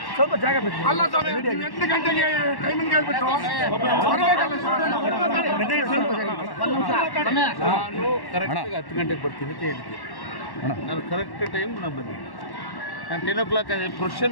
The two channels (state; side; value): late; right; 1.1 ms